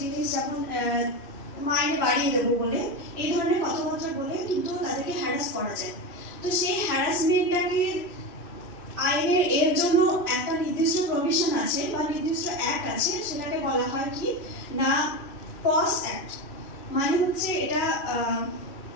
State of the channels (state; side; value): late; right; 2.6 ms